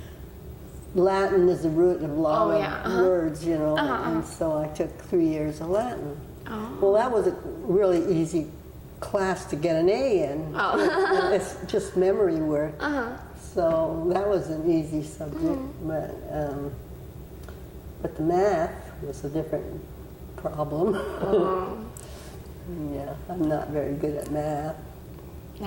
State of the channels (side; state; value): both; identical; correlation 1.00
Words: Latin is the root of a lot of words, you know, and so I took 3 years of Latin. Oh. Well, that was a really easy class to get an A in. Oh. It's just memory work. So that was an easy subject, but the math was a different problem. Yeah, I'm not very good at math.